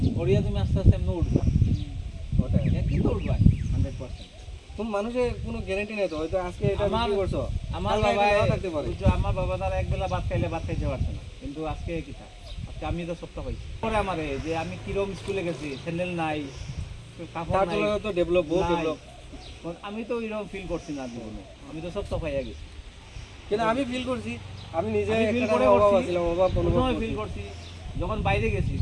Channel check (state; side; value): identical; both; correlation 1.00